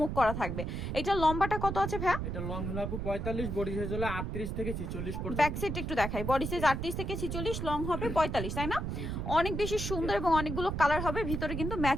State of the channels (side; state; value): right; noise; rumble, 3 dB below the sound